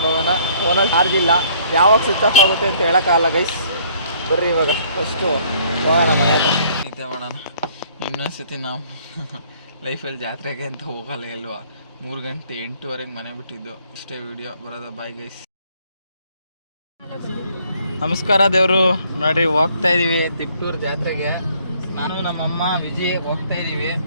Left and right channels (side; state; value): both; inverted; correlation -0.61